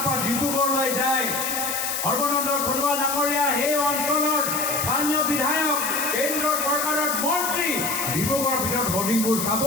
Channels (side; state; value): left; noise; hiss, 2 dB below the sound